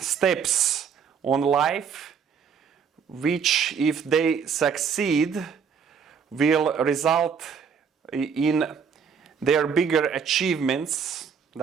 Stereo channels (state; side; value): quieter; left; 6.6 dB